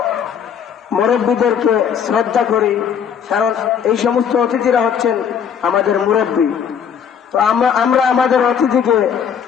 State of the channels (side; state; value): right; quieter; 7.8 dB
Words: মুরব্বীদেরকে শ্রদ্ধা করি, কারণ এই সমস্ত অতিথিরা হচ্ছেন আমাদের মুরব্বী। তো আমরা আমাদের অতিথিকে